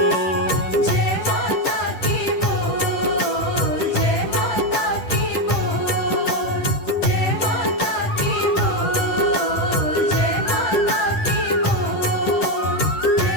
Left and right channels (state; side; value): late; right; 10 ms